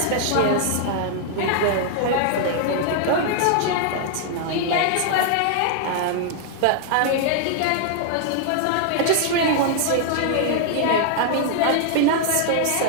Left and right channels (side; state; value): both; different; correlation 0.00